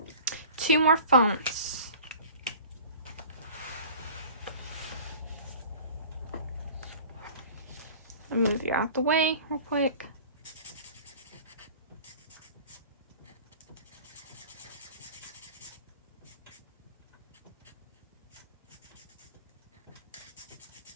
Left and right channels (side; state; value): both; inverted; correlation -0.43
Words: 2 more phones. I'll move you out the way real quick.